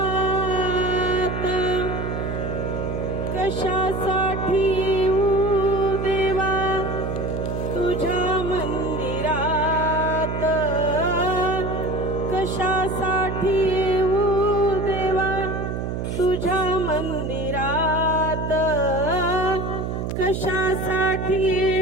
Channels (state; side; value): noise; right; hum, 3 dB below the sound